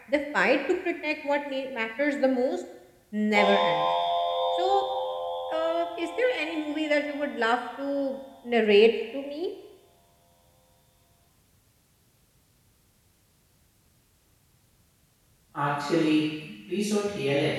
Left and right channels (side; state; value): both; identical; correlation 1.00